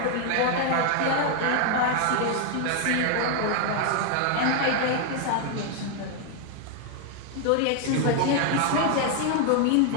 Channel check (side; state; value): both; different; correlation 0.00